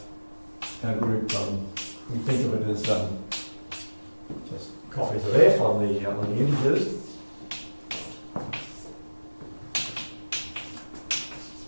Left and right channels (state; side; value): inverted; both; correlation -1.00